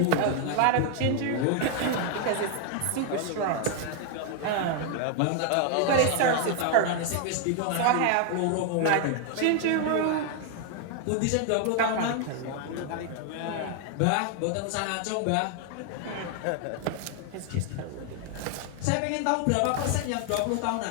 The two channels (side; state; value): both; different; correlation 0.00